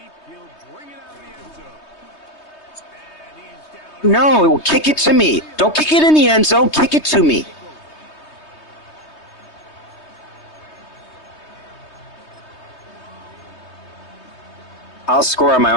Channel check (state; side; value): late; right; 3.2 ms